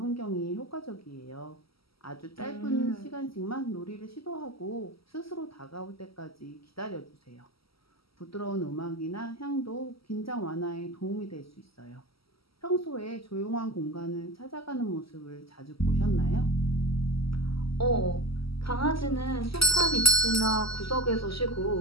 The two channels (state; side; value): late; right; 0.75 ms